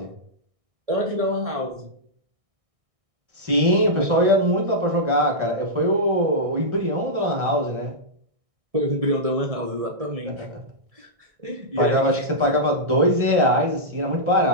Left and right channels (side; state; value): left; late; 1.6 ms